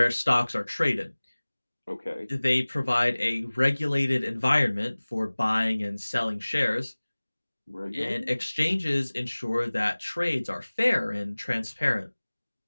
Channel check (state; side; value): inverted; both; correlation -1.00